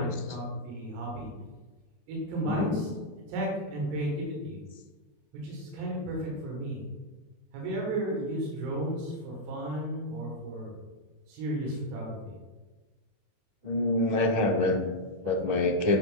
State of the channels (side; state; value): left; late; 21 ms